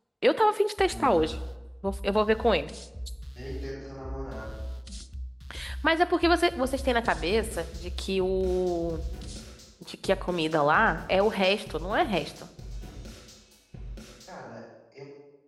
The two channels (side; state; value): both; identical; correlation 1.00